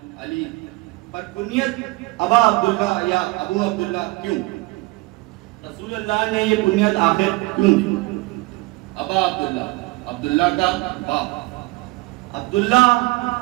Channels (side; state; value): left; quieter; 22.9 dB